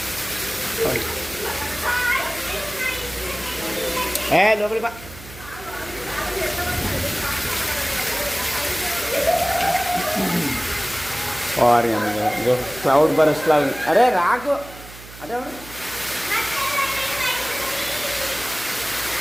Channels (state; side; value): noise; right; hum, 17 dB below the sound